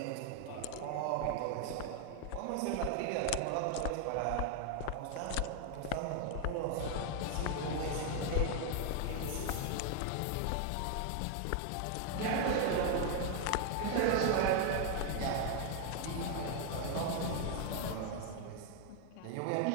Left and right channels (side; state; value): both; different; correlation 0.00